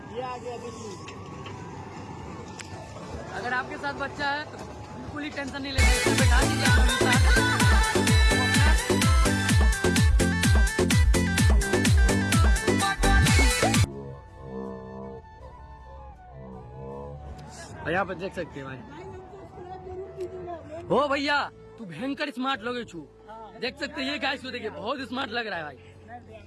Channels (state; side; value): identical; both; correlation 1.00